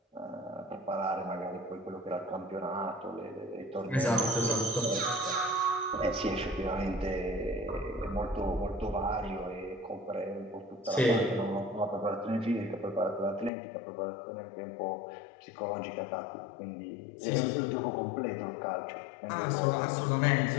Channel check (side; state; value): right; drops out; at 13.5 s